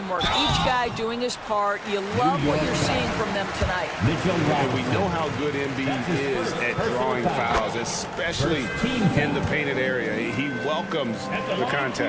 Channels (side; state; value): both; identical; correlation 1.00